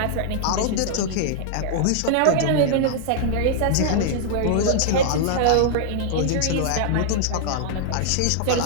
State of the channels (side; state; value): both; different; correlation -0.01